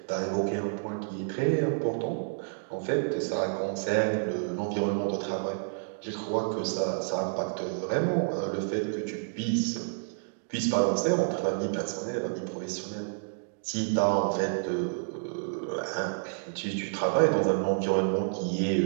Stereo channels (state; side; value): silent; left; digital silence